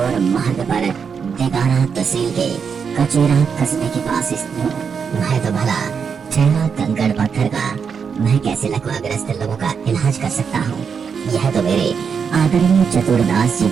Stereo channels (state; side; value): quieter; left; 6.4 dB